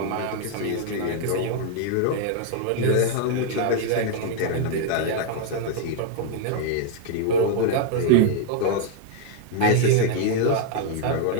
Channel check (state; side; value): different; both; correlation 0.00